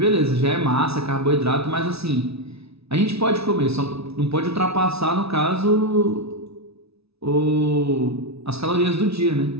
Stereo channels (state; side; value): late; left; 0.79 ms